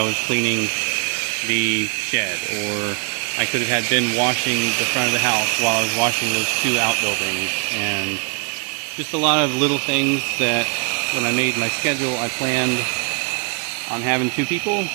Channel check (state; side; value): quieter; left; 34.4 dB